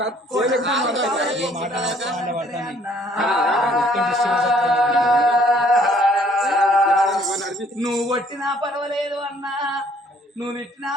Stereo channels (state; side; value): normal; both; correlation 0.61